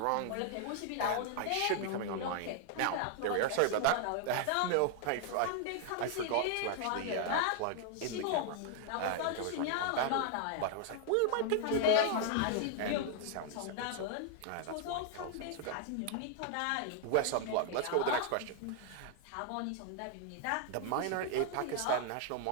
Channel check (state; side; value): different; both; correlation 0.00